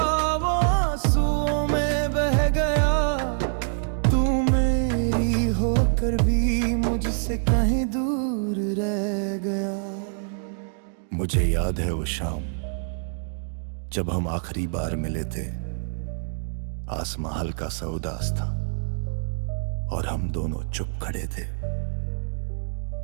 वो आंसुओं में बह गया, तू मेरी होकर भी मुझसे कहीं दूर रह गया। मुझे याद है वो शाम जब हम आखिरी बार मिले थे। आसमां हल्का सा उदास था और हम दोनों चुप खड़े थे।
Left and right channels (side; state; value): left; silent; digital silence